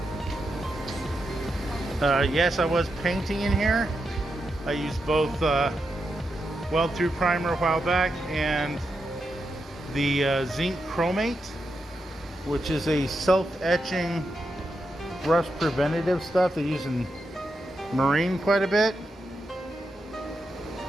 Yes, I was painting in here. I used both Weld Through Primer a while back and the zinc chromate, which is a self-etching rust preventative stuff they use in marine quite a bit.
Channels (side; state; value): both; normal; correlation 0.86